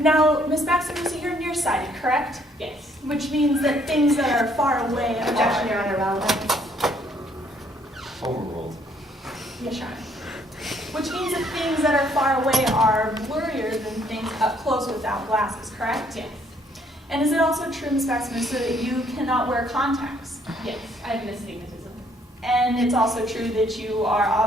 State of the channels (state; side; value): normal; both; correlation 0.65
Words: Ms. Batsimusa, you're nearsighted, correct? Yes. Which means that things that are far away Objection, are... Your Honor, relevant. Overruled. Yes, Your Honor. Which means that things that are far away are blurrier than things up close without glasses, correct? Yes. And is it also true, Ms. Batsimusa, that you cannot wear contacts? Yes. I have astigmatism. And it's also true that you are